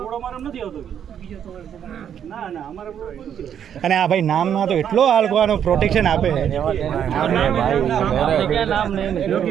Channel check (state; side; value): quieter; left; 9.0 dB